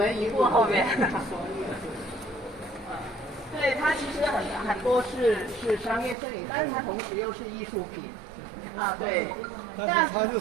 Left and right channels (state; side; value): drops out; left; at 6.2 s